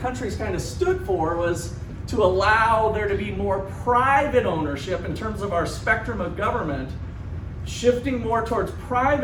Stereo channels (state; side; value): identical; both; correlation 1.00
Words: kind of stood for, was to allow there to be more private ownership in terms of our spectrum of government, shifting more towards